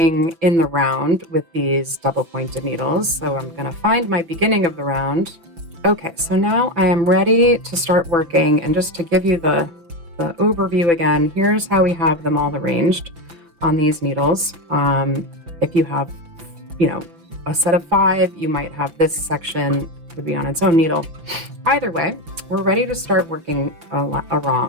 in the round with these double pointed needles. So I'm going to find my beginning of the round. Okay, so now I am ready to start working, and just to give you the overview again, here's how we have them all arranged on these needles. If you have, a set of 5, you might have this section would be on its own needle. Either way, we're ready to start working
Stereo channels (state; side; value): late; left; 5.9 ms